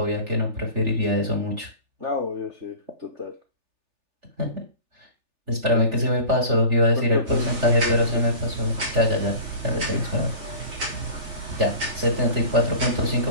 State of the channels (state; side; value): late; left; 3.4 ms